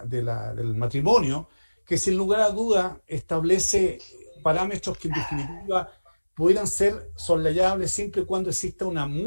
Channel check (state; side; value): inverted; both; correlation -1.00